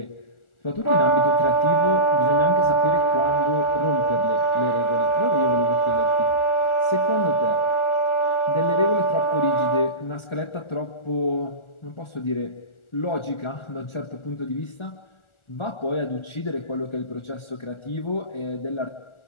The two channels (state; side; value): late; right; 1.4 ms